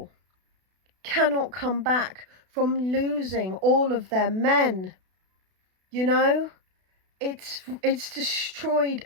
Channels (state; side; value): late; left; 32 ms